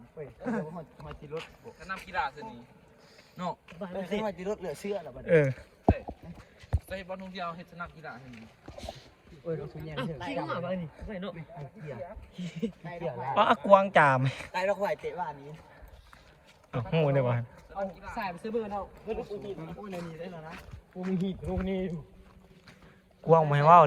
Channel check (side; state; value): both; identical; correlation 1.00